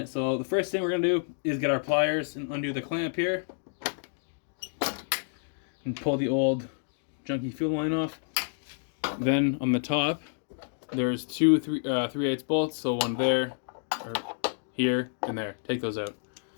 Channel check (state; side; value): silent; right; digital silence